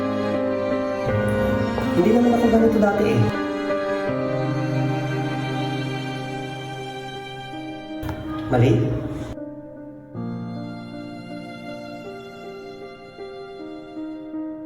Hindi naman ako ganito dati eh. Mali?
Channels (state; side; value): identical; both; correlation 1.00